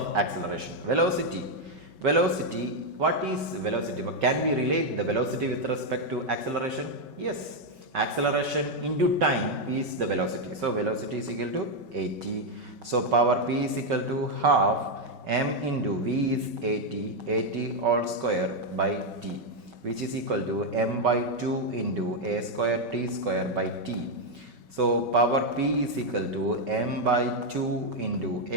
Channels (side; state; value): left; late; 5.3 ms